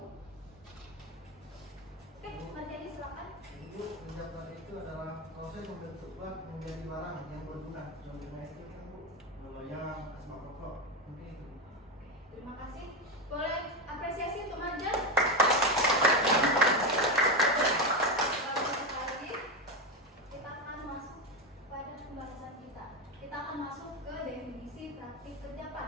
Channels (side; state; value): both; normal; correlation 0.13